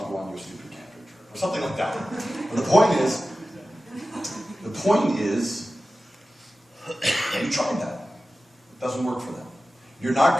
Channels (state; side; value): normal; both; correlation 0.94